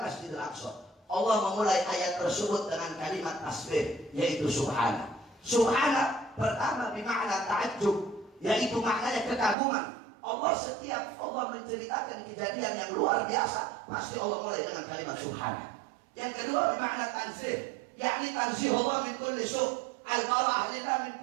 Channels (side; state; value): left; drops out; at 9.6 s